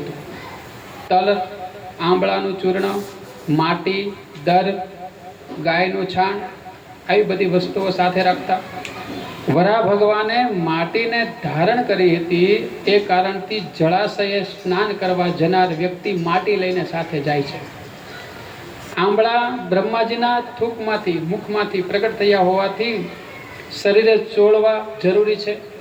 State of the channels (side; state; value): both; identical; correlation 1.00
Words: તલ, આંબળાનું ચૂર્ણ, માટી, દર, ગાયનું છાણ આવી બધી વસ્તુઓ સાથે રાખતા. વરાહ ભગવાને માટીને ધારણ કરી હતી. એ કારણથી જળાશયે સ્નાન કરવા જનાર વ્યક્તિ માટી લઈને સાથે જાય છે. આંબળા બ્રહ્માજીના થૂકમાંથી, મુખમાંથી પ્રગટ થયા હોવાથી શરીરે ચોળવા જરૂરી છે,